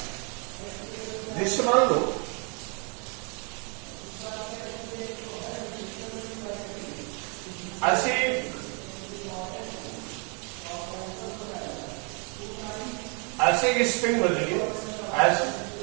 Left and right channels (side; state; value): left; quieter; 35.8 dB